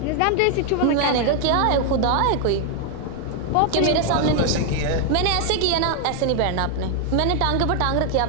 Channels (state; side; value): different; both; correlation 0.00